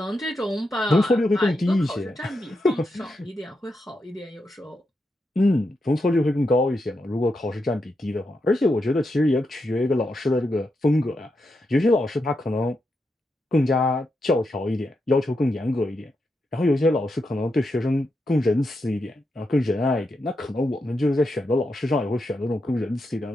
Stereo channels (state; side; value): normal; both; correlation 0.85